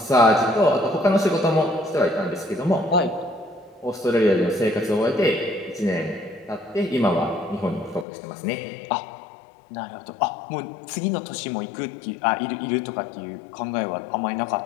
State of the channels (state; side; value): drops out; right; at 8.1 s